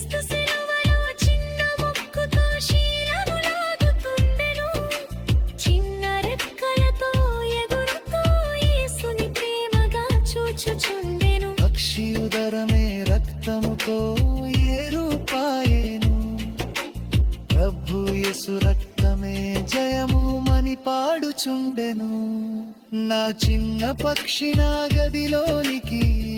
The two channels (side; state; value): both; identical; correlation 1.00